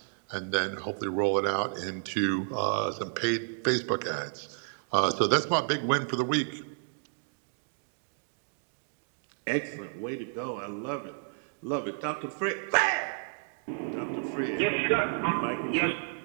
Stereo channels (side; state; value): left; silent; digital silence